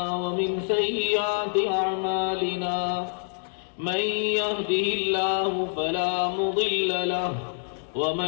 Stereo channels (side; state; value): right; silent; digital silence